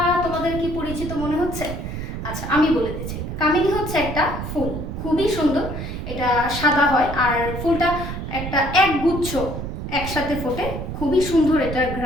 তোমাদের কি পরিচিত মনে হচ্ছে? আচ্ছা, আমি বলে দিচ্ছি। কামিনী হচ্ছে একটা ফুল, খুবই সুন্দর। এটা সাদা হয়, আর ফুলটা একটা একগুচ্ছ একসাথে ফোটে, খুবই সুন্দর এটার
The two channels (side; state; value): right; noise; rumble, 6 dB below the sound